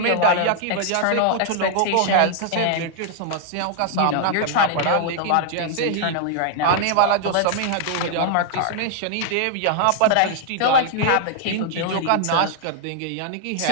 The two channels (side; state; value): both; different; correlation -0.01